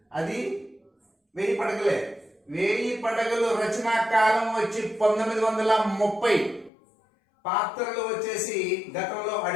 అది 1000 పడగలే. 1000 పడగలు రచనా కాలం వచ్చి 1930. పాత్రలు వచ్చేసి గతంలో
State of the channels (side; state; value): right; drops out; at 6.7 s